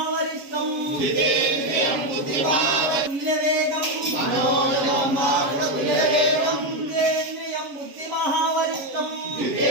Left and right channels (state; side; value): late; left; 7.6 ms